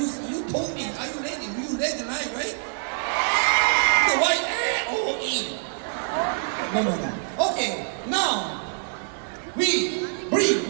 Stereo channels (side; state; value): left; silent; digital silence